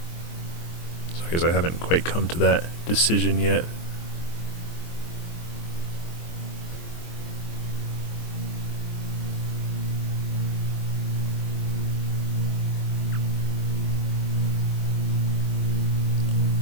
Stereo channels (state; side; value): late; right; 24 ms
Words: So I guess I haven't quite come to that decision yet.